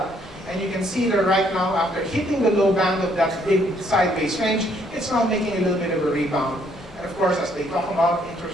And you can see that right now, after hitting the low band of that big sideways range, it's now making a little bit of a rebound. And of course, as they talk about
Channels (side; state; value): both; normal; correlation 0.68